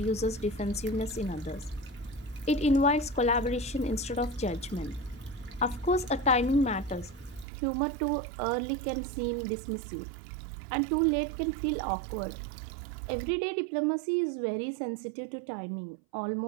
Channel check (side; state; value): left; drops out; at 7.5 s